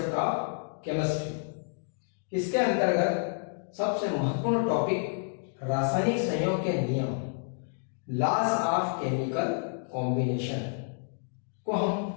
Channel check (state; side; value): silent; right; digital silence